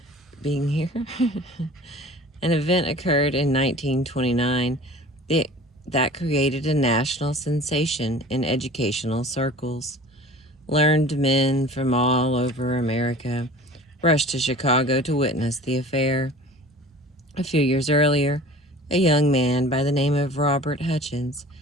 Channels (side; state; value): both; normal; correlation 0.43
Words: being here. An event occurred in 1929 that created a national sensation in educational circles. Learned men from all over America rushed to Chicago to witness the affair. A few years earlier, a young man by the name of Robert Hutchins